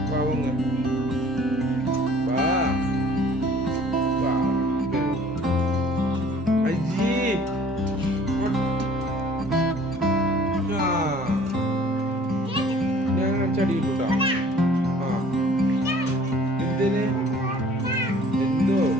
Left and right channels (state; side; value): normal; both; correlation 0.52